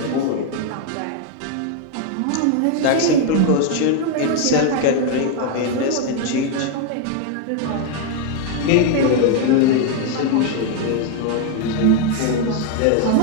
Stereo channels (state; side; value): different; both; correlation 0.01